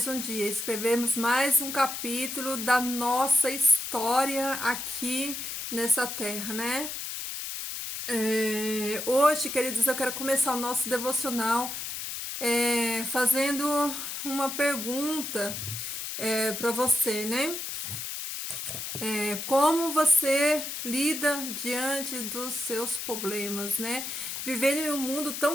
um dia, escrevermos mais um capítulo da nossa história aqui nessa terra, né? Hoje, queridos, eu quero começar o nosso devocional fazendo uma pergunta para você, né? Como você lida diante dos seus problemas, né? Vivendo em um mundo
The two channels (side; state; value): left; noise; hiss, 6 dB below the sound